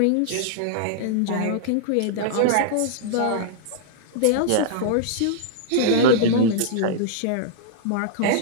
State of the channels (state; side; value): different; both; correlation -0.02